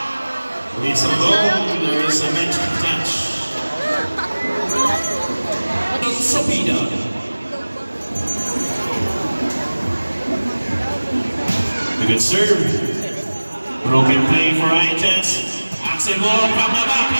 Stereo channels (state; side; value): inverted; both; correlation -1.00